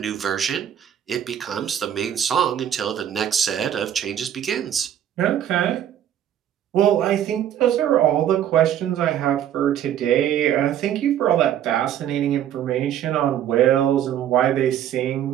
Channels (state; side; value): quieter; left; 10.4 dB